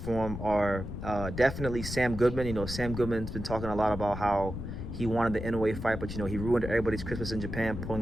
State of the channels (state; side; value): noise; left; rumble, 7 dB below the sound